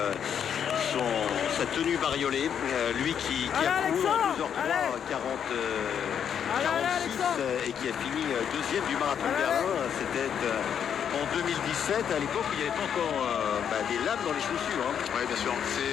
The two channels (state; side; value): quieter; right; 8.3 dB